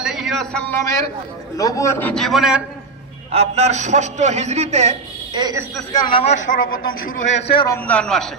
আলাইহি ওয়াসাল্লামের নবুয়তি জীবনের আপনার ৬ষ্ঠ হিজরিতে এই ইস্তিসকার নামাজ সর্বপ্রথম শুরু হয়েছে রমজান মাসে।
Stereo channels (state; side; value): quieter; left; 4.2 dB